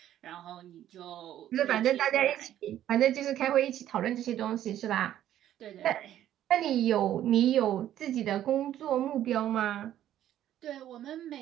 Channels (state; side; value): quieter; left; 11.9 dB